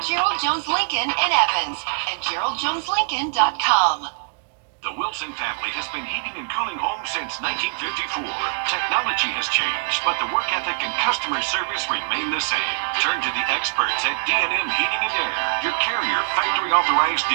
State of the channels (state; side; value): silent; left; digital silence